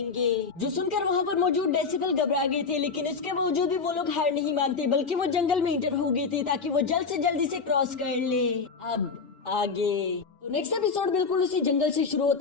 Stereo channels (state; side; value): quieter; right; 4.9 dB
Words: जो सुनकर वहाँ पर मौजूद डेसिबल घबरा गए थे, लेकिन इसके बावजूद भी वो लोग हार नहीं मानते, बल्कि वो जंगल में इंटर हो गए थे ताकि वो जल्द से जल्दी से क्रॉस कर ले। अब आगे तो नेक्स्ट एपिसोड बिल्कुल उसी जंगल से शुरू